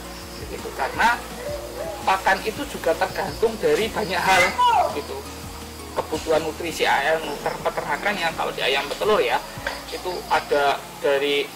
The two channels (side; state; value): both; identical; correlation 1.00